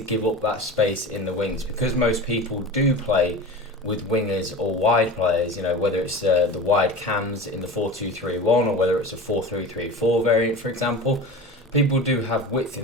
up that space in the wings because most people do play with wingers or wide players, you know, whether it's the wide cams in the 4-2-3-1 or whether it's a 4-3-3-4 variant, for example. People do have width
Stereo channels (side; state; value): both; normal; correlation 0.32